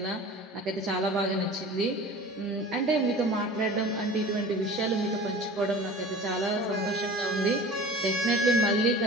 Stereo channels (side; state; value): both; normal; correlation 0.40